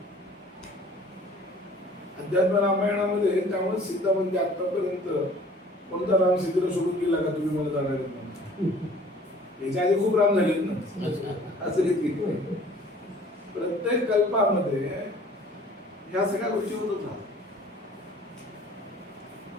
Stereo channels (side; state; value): both; normal; correlation 0.51